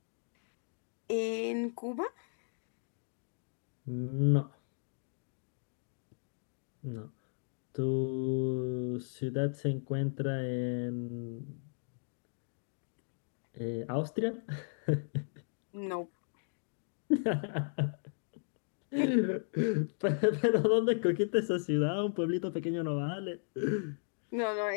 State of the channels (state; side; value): silent; right; digital silence